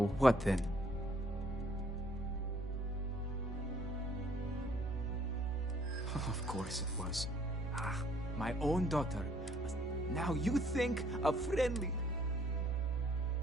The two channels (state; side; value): normal; both; correlation 0.62